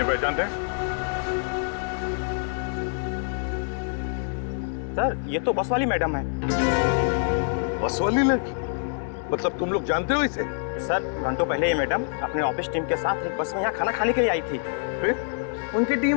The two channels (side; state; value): right; silent; digital silence